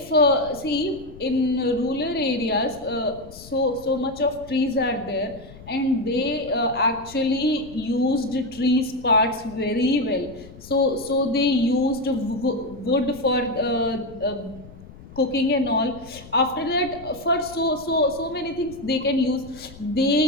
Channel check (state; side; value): noise; left; rumble, 19 dB below the sound